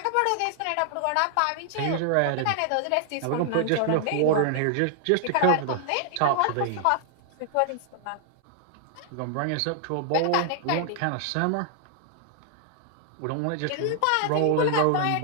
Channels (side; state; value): both; different; correlation 0.00